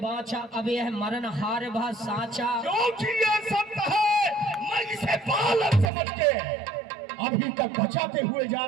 बाचा, अब यह मरण हार भा साचा। क्योंकि ये सत्य है, मैं इसे बालक समझ के अभी तक बचाते हुए जा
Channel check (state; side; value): drops out; left; at 5.9 s